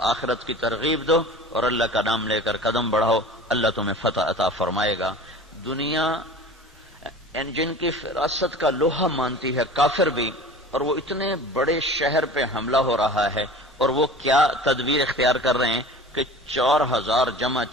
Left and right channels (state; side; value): normal; both; correlation 0.39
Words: آخرت کی ترغیب دو اور اللہ کا نام لے کر قدم بڑھاؤ، اللہ تمہیں فتح عطا فرمائے گا. دنیا جن کی فراست کا لوہا مانتی ہے، کافر بھی، اور وہ اتنے بڑے شہر پہ حملہ ہو رہا ہے، اور وہ کیا تدبیر اختیار کر رہے ہیں کہ 4,000 جمع